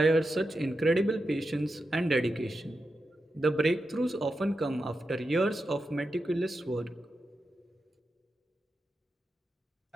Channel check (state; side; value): normal; both; correlation 0.89